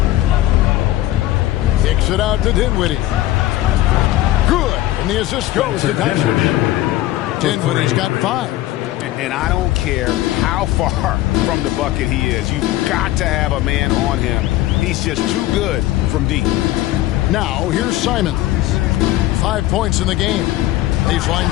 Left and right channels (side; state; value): right; quieter; 15.3 dB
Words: Kicks it out to Dinwiddie. Good. And the assist goes to Doncic. Dinwiddie's got 5. And I don't care how far from the bucket he is. You've got to have a man on him. He's just too good from deep. Now, here's Simons. 5 points in the game. Baseline